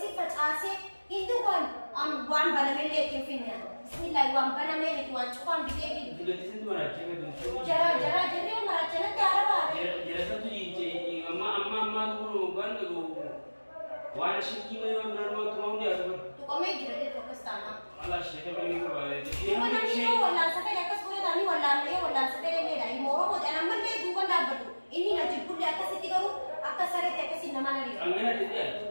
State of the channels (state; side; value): inverted; both; correlation -1.00